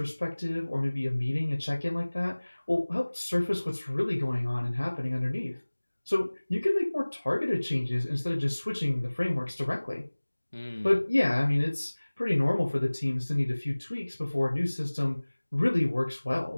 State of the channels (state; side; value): inverted; both; correlation -1.00